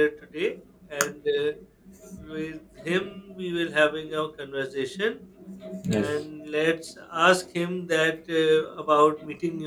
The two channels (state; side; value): identical; both; correlation 1.00